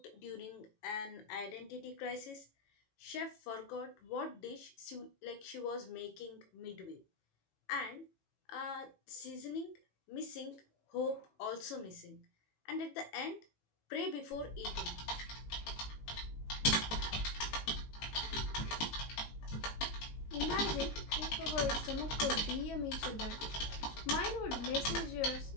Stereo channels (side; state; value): right; late; 18 ms